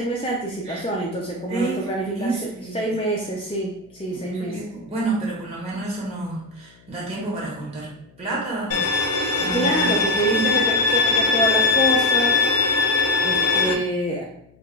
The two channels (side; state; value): left; noise; hum, 29 dB below the sound